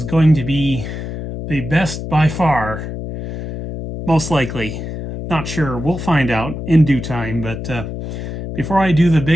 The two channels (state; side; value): noise; left; hum, 7 dB below the sound